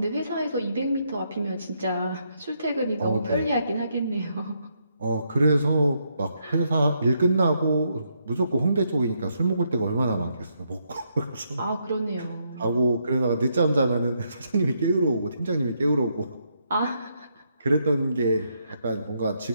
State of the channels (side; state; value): both; inverted; correlation -0.77